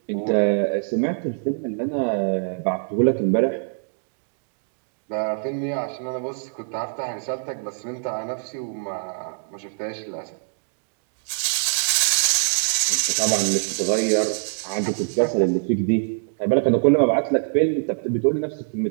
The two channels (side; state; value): left; silent; digital silence